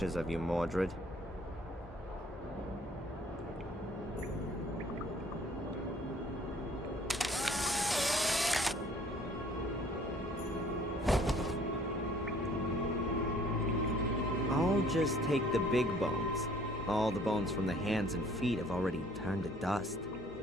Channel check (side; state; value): both; normal; correlation 0.57